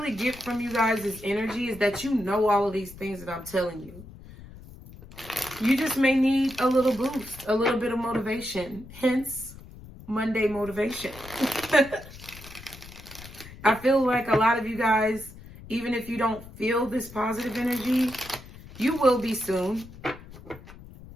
get from you guys' energy is that you know all of these things that I'm telling you. You just may need a little boost, a little bit of motivation. Hence, Monday motivation. I feel like a lot of you guys, even if you don't feel this positive energy, you will be soon.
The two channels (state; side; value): noise; left; rumble, 17 dB below the sound